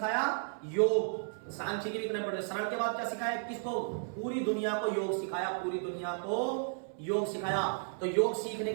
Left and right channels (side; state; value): left; silent; 55 dB below the other